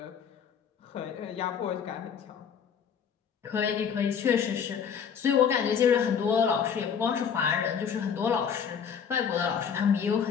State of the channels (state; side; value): quieter; right; 7.3 dB